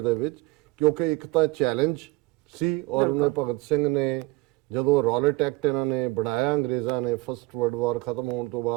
ਦੇ ਵਿੱਚ, ਕਿਉਂਕਿ ਇੱਕ ਤਾਂ ਚੈਲੰਜ ਸੀ ਔਰ ਉਹਨੇ ਭਗਤ ਸਿੰਘ ਨੇ ਜਦੋਂ ਰੌਲਟ ਐਕਟ ਇਹਨਾਂ ਨੇ ਬਣਾਇਆ ਅੰਗਰੇਜ਼ਾਂ ਨੇ, ਫਸਟ ਵਰਲਡ ਵਾਰ ਖਤਮ ਹੋਣ ਤੋਂ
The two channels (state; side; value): quieter; left; 21.7 dB